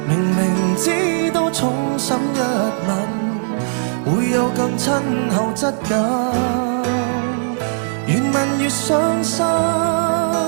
明明知道重審一吻會有更親厚質感，越問越傷心，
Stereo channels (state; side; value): silent; left; 59 dB below the other